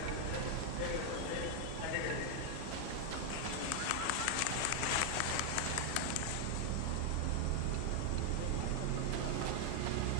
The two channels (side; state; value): both; different; correlation 0.00